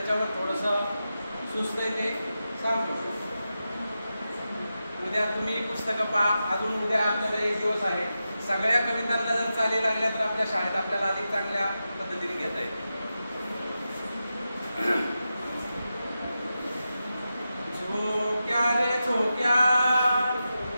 थोडंसं सुस्त आहे ते सांगतो. उद्या तुम्ही पुस्तकं पहा. अजून उद्या आपल्याला एक दिवस आहे. सगळ्या कवितांना जर चाली लागल्या तर आपल्या शाळेत आपल्याला अधिक चांगल्या पद्धतीने घेता येईल. झोक्या रे झोक्या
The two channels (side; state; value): both; inverted; correlation -0.91